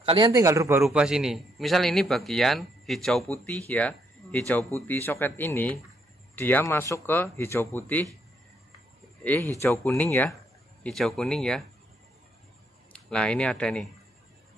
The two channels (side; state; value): both; normal; correlation 0.74